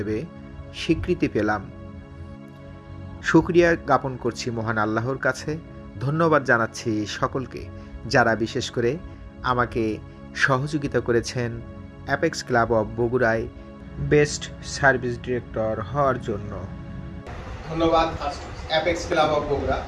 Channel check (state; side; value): identical; both; correlation 1.00